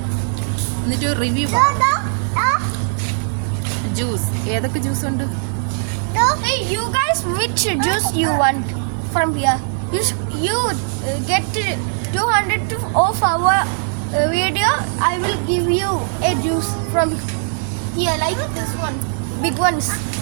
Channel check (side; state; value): left; silent; digital silence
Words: എന്നിട്ട് റിവ്യൂ ജ്യൂസ്. ഏതൊക്കെ ജ്യൂസ് ഉണ്ട്? Hey, you guys, which juice you want from here? You get 200 of our video. I will give you a juice from here, like this one, big ones.